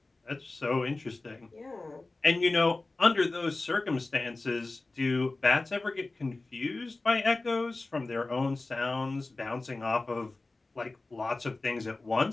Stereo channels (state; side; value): quieter; right; 3.2 dB